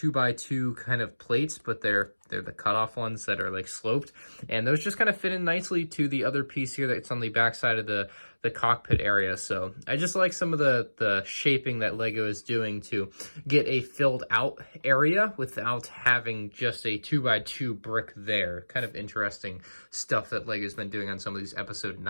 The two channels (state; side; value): inverted; both; correlation -1.00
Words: kind of plates, but they're They're the cutoff ones that are like sloped, and those just kind of fit in nicely to the other piece here that's on the back side of the cockpit area. So I just like some of the shaping that Lego is doing to get a filled out area without having just a 2x2 brick there. Kind of interesting stuff that Lego's been doing on some of these episode